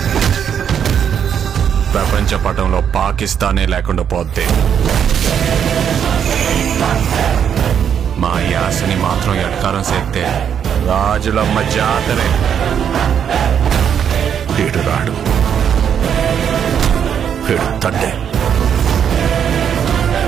ప్రపంచ పటంలో పాకిస్తానే లేకుండా పోతే మా యాసని మాత్రం ఎట్కారం చేస్తే రాజులమ్మ జాతరే. వీడు రాడు, వీడు తండ్రి.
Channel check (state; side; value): quieter; left; 8.3 dB